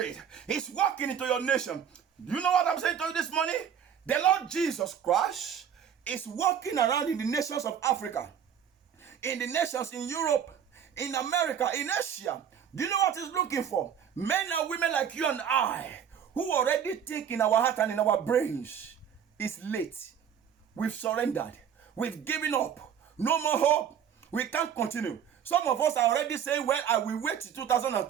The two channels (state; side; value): quieter; left; 8.5 dB